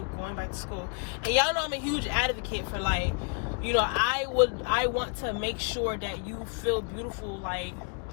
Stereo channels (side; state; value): right; quieter; 38.3 dB